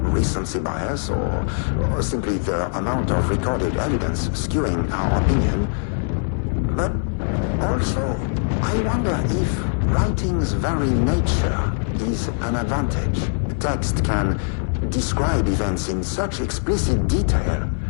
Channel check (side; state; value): right; silent; digital silence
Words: recency bias or simply the amount of recorded evidence skewing our opinion. But also, I wonder if writing's very nature is an advantage. Text can describe events in such explicit detail.